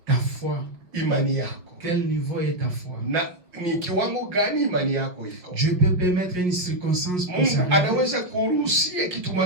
ta foi. Imani yako. Quel niveau est ta foi? Na ni kiwango gani imani yako iko? Dieu peut permettre une circonstance pour ça. Anaweza kuruhusia kitu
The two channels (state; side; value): late; left; 5.5 ms